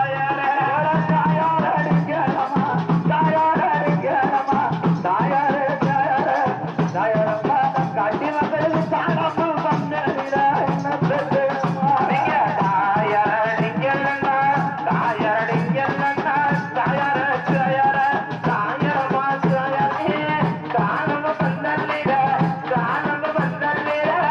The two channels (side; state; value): both; identical; correlation 1.00